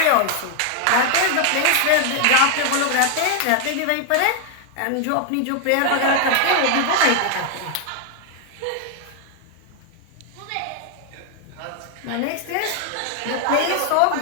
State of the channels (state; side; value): different; both; correlation 0.00